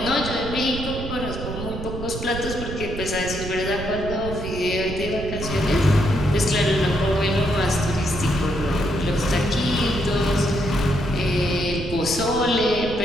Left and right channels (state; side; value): noise; right; rumble, 7 dB below the sound